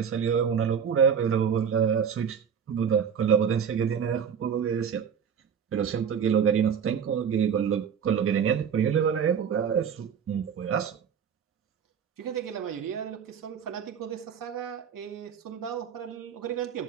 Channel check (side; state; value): left; quieter; 7.5 dB